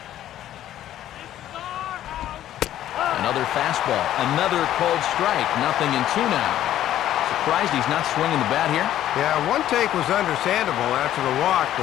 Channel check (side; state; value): right; quieter; 12.3 dB